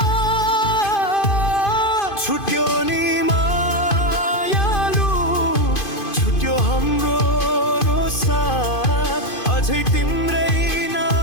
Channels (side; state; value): right; late; 2.5 ms